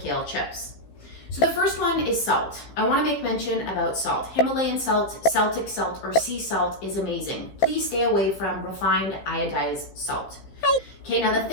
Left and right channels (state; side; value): late; right; 15 ms